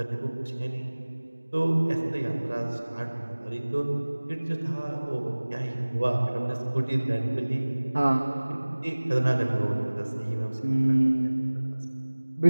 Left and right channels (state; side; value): inverted; both; correlation -1.00